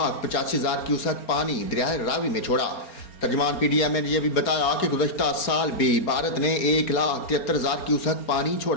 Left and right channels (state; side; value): late; right; 4.4 ms